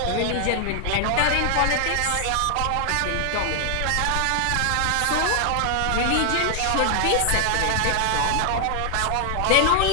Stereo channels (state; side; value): different; both; correlation 0.00